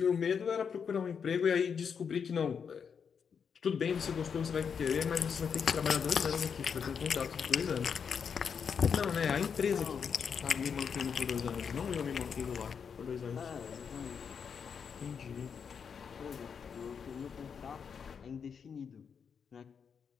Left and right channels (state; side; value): quieter; right; 6.7 dB